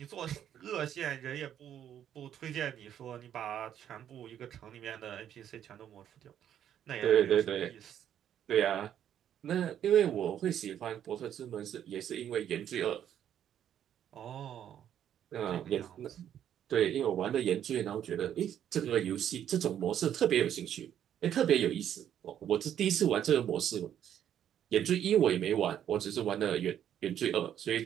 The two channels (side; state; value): left; quieter; 10.1 dB